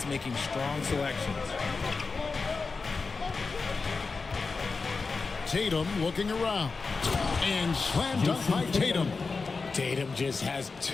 making strong selections. Tatum looking around. And slam dunk by Tatum. Tatum just has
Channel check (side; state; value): right; quieter; 4.4 dB